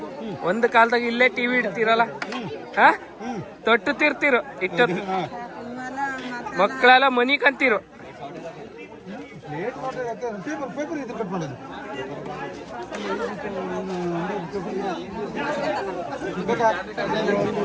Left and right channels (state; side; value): identical; both; correlation 1.00